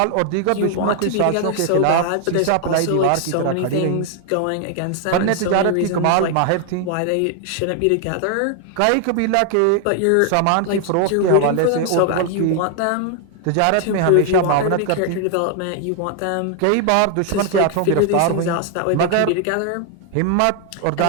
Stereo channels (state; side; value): different; both; correlation 0.00